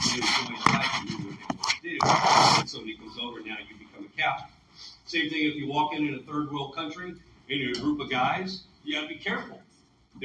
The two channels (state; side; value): identical; both; correlation 1.00